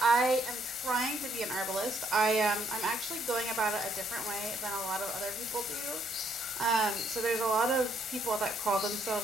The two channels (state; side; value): normal; both; correlation 0.70